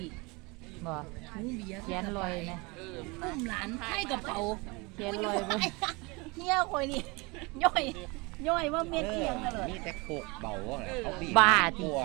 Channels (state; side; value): quieter; left; 26.7 dB